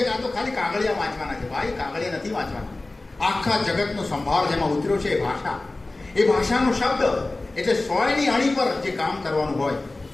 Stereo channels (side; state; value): right; quieter; 3.0 dB